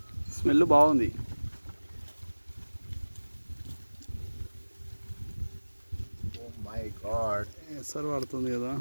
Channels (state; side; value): inverted; both; correlation -1.00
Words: స్మెల్ బాగుంది. ఓ మై గాడ్, ఎసరు పడుతుంది కదా.